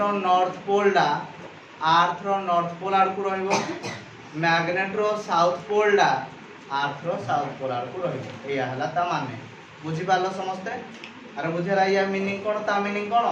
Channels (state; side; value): identical; both; correlation 1.00